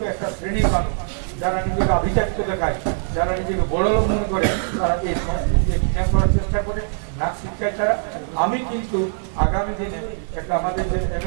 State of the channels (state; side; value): silent; left; 64 dB below the other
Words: একটা শ্রেণীর মানুষ যারা নিজেকে আভিজাত্য দেখায়, যারা নিজেকে বড় লোক মনে করে, তারা এই সংস্কৃতিকে ঘৃণা করার চেষ্টা করে, নাচ শিক্ষায় তারা। আমি কিন্তু আগামী দিনে একটা আমাদের যে